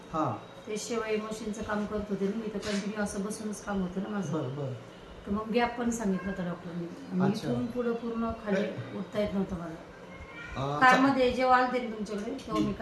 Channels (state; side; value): identical; both; correlation 1.00